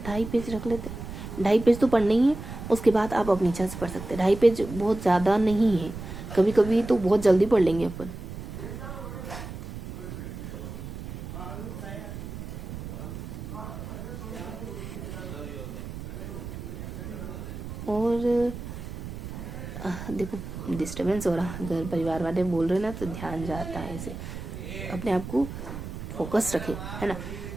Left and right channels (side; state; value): right; noise; rumble, 9 dB below the sound